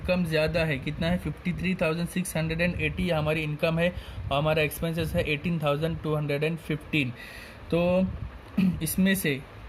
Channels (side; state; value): both; identical; correlation 1.00